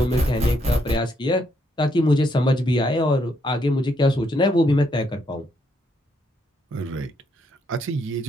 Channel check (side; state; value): both; normal; correlation 0.75